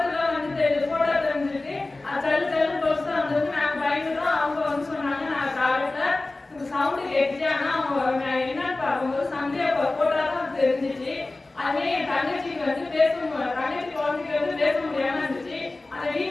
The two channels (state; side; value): quieter; right; 3.1 dB